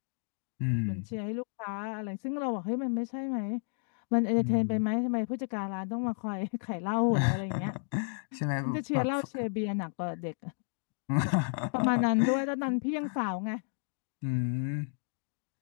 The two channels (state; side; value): silent; right; 56 dB below the other